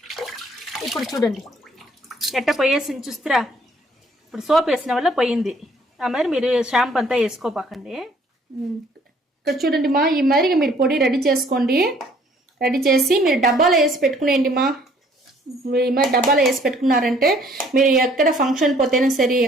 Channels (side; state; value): both; normal; correlation 0.60